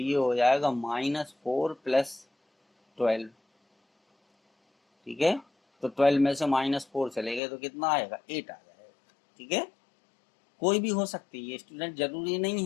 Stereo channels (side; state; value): right; drops out; at 7.4 s